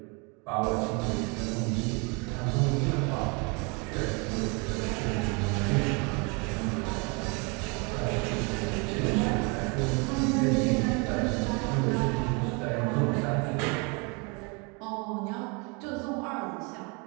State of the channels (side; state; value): left; quieter; 31.5 dB